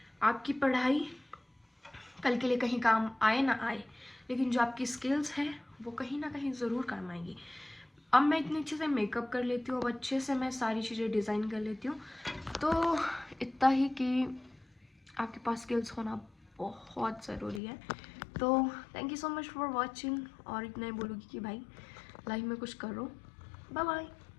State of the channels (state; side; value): drops out; right; at 17.6 s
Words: आपकी पढ़ाई कल के लिए कहीं काम आए ना आए, लेकिन जो आपकी स्किल्स है वो कहीं ना कहीं ज़रूर काम आएंगी। अब मैं इतनी अच्छे से मेकअप कर लेती हूँ, अब अच्छे से मैं सारी चीज़ें डिज़ाइन कर लेती हूँ। तो इतना ही कि आपके पास स्किल्स होना बहुत ज़रूरी है। तो thank you so much for watching, और इतना ही बोलूँगी कि भाई लाइफ में कुछ करो। Bye bye.